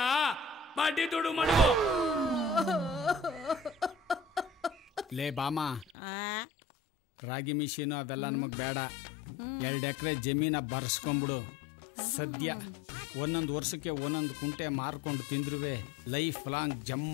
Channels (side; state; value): right; drops out; at 6.0 s